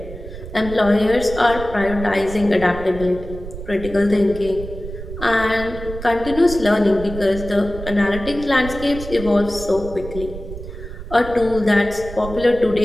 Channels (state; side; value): noise; right; rumble, 11 dB below the sound